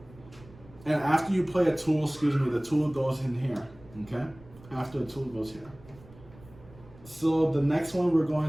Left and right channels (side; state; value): right; noise; rumble, 22 dB below the sound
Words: after you play a tool, the tool goes in here, okay? After the tool goes here. So the next one we're